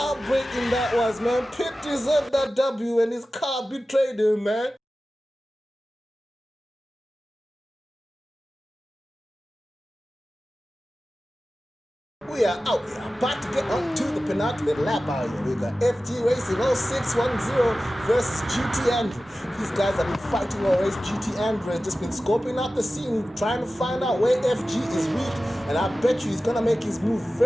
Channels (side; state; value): both; normal; correlation 0.95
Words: that was, man. Pitt deserved that W and his car betrayed him, man. We are out. We are about to get on to the penultimate lap out here. We got FG Racing 0610 versus GT Andrew. These guys have been fighting all race. GT Andrew has just been scoping out the scene, trying to find out where FG is weak. And I bet you he's going to make his move